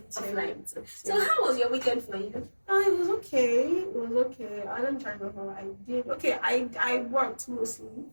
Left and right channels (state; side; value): inverted; both; correlation -1.00